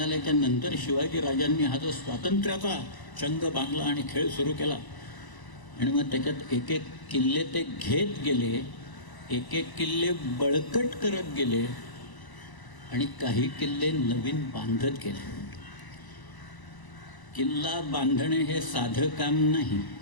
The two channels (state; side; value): late; right; 1.0 ms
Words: नंतर शिवाजीराजांनी हा जो स्वातंत्र्याचा चंग बांधला आणि खेळ सुरू केला. आणि मग त्याच्यात एक एक किल्ले ते घेत गेले, एक एक किल्ले बळकट करत गेले आणि काही किल्ले नवीन बांधत गेले. किल्ला बांधणे हे साधं काम नाही,